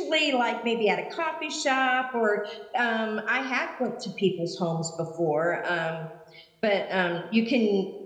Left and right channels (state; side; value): identical; both; correlation 1.00